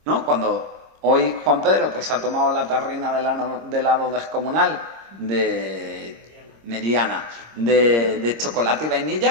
¿no? Cuando hoy Juan Pedro pues ha tomado la tarrina de helado descomunal mediana de chocolate y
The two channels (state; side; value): late; left; 26 ms